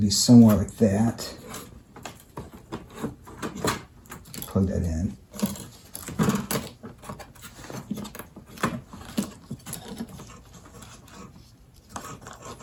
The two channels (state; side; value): identical; both; correlation 1.00